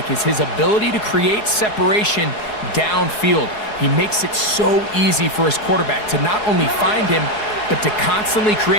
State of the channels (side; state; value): right; late; 4.7 ms